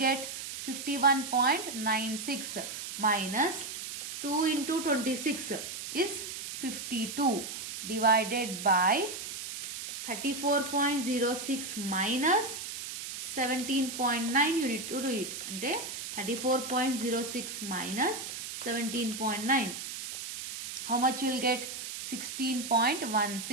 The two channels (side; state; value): right; noise; hiss, 7 dB below the sound